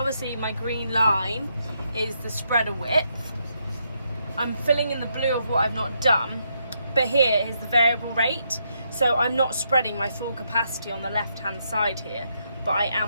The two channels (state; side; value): inverted; both; correlation -0.78